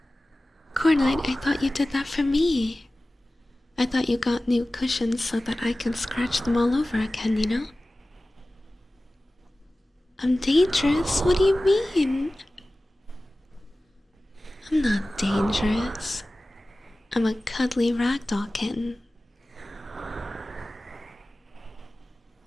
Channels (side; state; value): both; normal; correlation 0.97